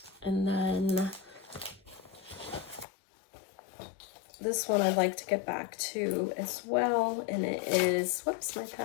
And then this one I'd like to get back to as well, and it is, whoops, my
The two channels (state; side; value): drops out; right; at 2.9 s